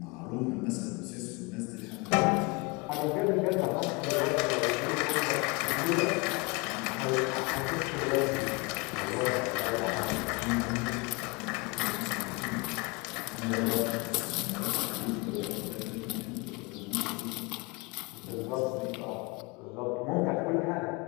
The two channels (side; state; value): right; quieter; 27.6 dB